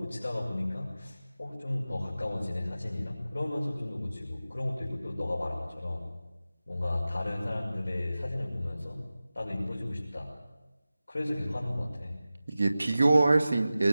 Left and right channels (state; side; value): inverted; both; correlation -0.96